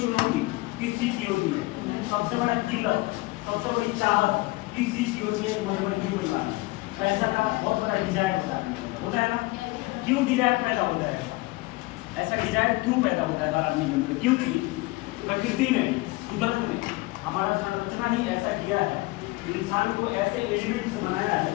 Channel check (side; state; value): right; quieter; 21.9 dB